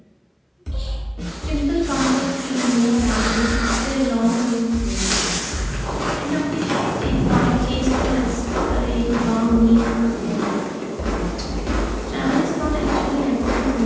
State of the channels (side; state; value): both; identical; correlation 1.00